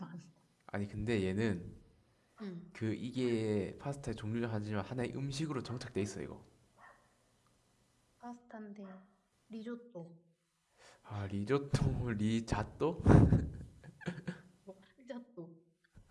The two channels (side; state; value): both; identical; correlation 1.00